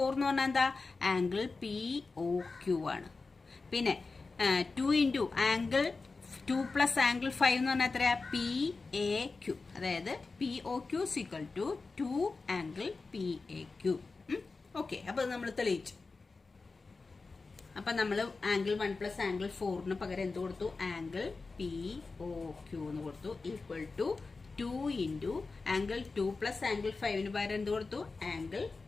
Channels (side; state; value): right; quieter; 4.0 dB